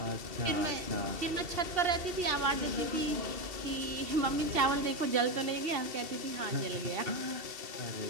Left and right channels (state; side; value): late; left; 2.7 ms